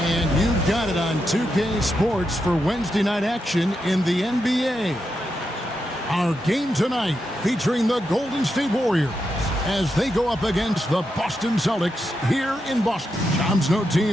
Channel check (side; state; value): both; normal; correlation 0.85